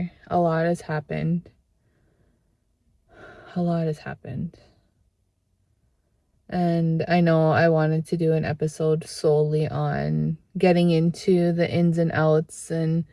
A lot has happened. A lot has happened. And I know I wanted to do an episode solely on getting into the ins and outs and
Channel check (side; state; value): both; identical; correlation 1.00